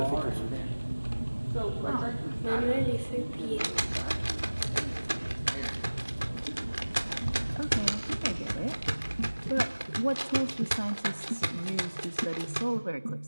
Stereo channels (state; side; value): inverted; both; correlation -1.00